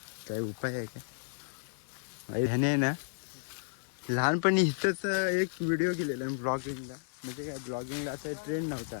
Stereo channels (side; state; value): right; silent; 56 dB below the other